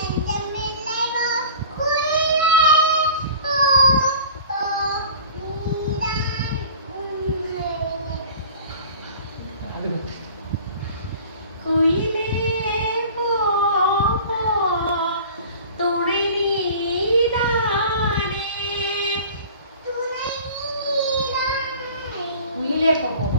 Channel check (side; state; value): both; inverted; correlation -0.42